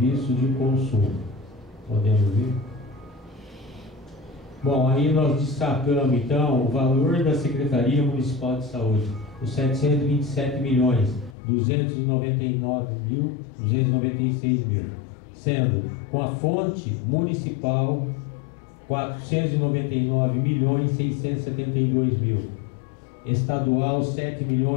de consumo. Podemos ver? Bom, aí nós destacamos então o valor da Secretaria Municipal de Saúde, os 727.299.296.000, sendo com a fonte municipal 499.672.000, estadual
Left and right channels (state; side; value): drops out; right; at 11.4 s